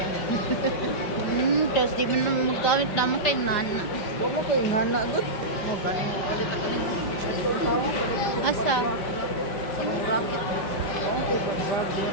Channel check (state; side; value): late; right; 5.1 ms